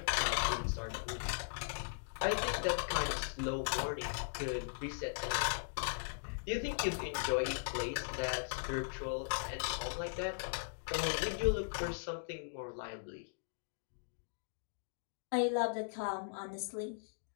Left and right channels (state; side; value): silent; right; digital silence